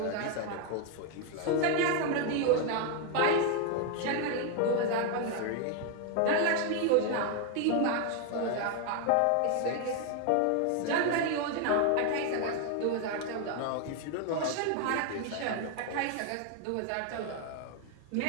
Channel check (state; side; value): different; both; correlation 0.01